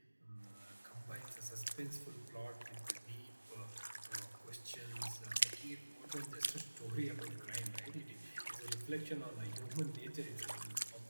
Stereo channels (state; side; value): inverted; both; correlation -1.00